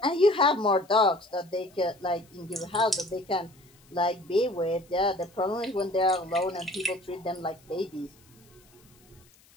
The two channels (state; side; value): noise; left; hiss, 29 dB below the sound